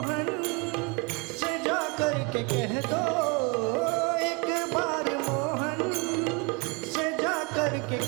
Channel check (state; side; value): quieter; left; 30.5 dB